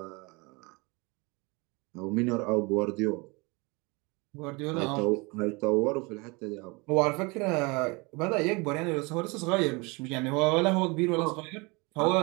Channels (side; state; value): left; quieter; 27.1 dB